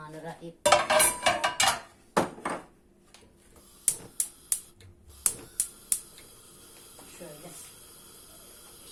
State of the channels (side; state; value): both; identical; correlation 1.00